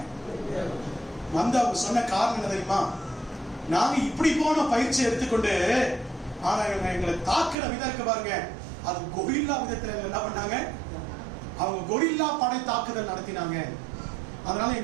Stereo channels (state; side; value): drops out; left; at 7.6 s